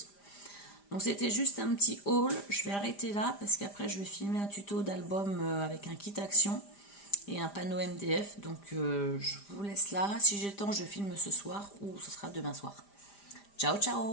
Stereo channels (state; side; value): late; right; 5.0 ms